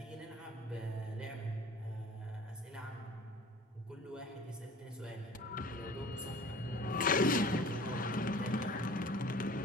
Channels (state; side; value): normal; both; correlation 0.45